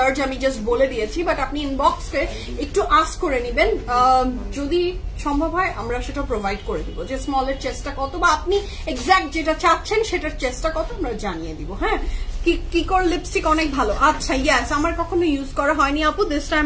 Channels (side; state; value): both; identical; correlation 1.00